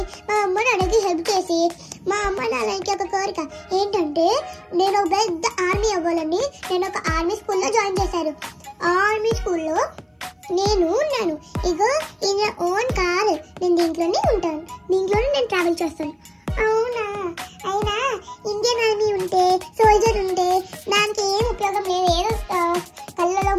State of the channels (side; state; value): both; identical; correlation 1.00